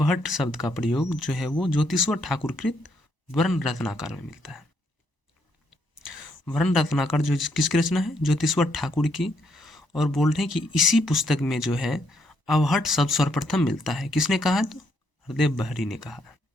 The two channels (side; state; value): right; late; 1.0 ms